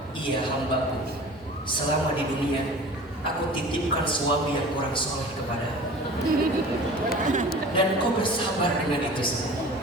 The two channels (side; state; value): both; normal; correlation 0.40